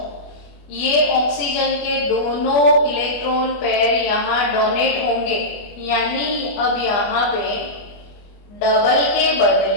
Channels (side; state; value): right; late; 24 ms